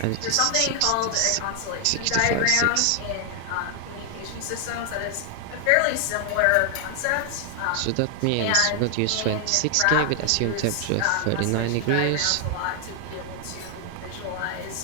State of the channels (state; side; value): different; both; correlation 0.00